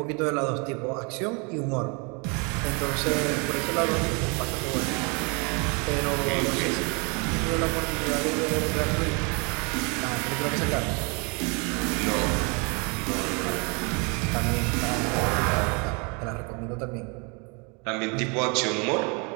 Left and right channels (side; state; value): left; quieter; 32.4 dB